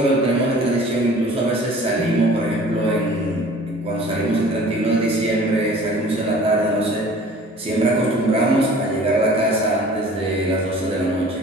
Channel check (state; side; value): normal; both; correlation 0.47